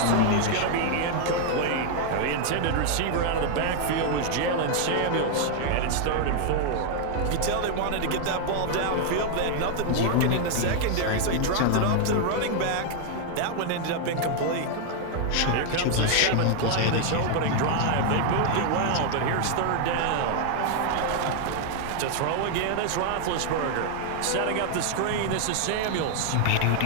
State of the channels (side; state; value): both; different; correlation 0.00